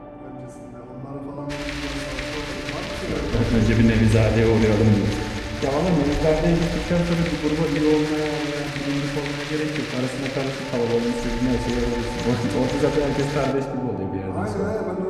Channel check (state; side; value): identical; both; correlation 1.00